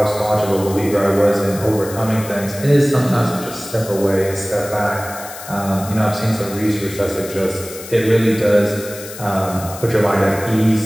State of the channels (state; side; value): noise; left; hiss, 13 dB below the sound